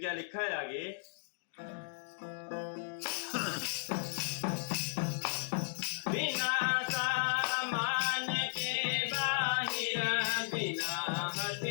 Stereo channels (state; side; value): silent; right; digital silence